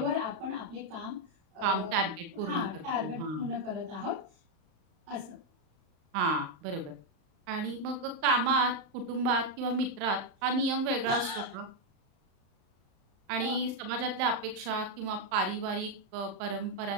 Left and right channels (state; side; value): late; left; 35 ms